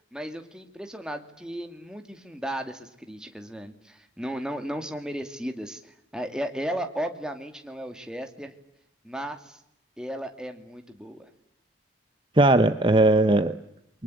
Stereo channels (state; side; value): normal; both; correlation 0.59